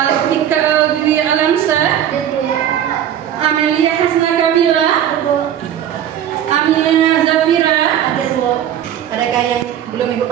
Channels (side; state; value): left; quieter; 10.3 dB